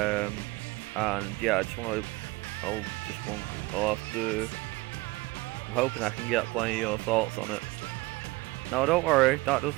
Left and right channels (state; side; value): quieter; left; 21.5 dB